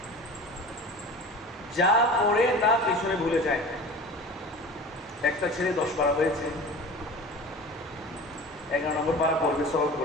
যা পড়ে তা পিছনে ভুলে যায়। একটা ছেলে 10 পারা হয়েছে, 11 নম্বর পারা পড়বে, সলভ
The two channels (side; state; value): both; normal; correlation 0.37